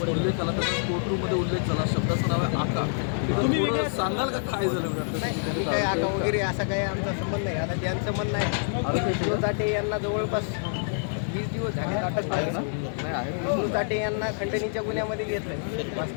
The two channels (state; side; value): silent; right; digital silence